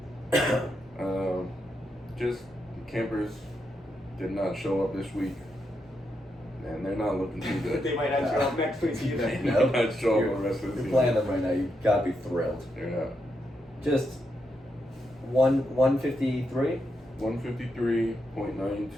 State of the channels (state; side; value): normal; both; correlation 0.82